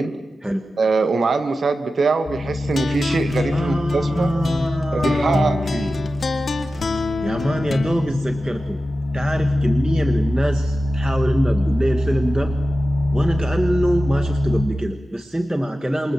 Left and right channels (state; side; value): normal; both; correlation 0.93